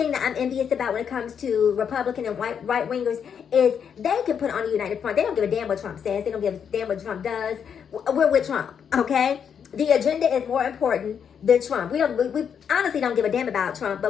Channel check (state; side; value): quieter; right; 7.5 dB